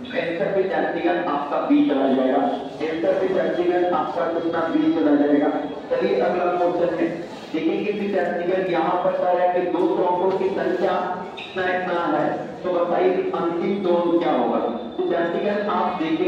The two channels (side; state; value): both; identical; correlation 1.00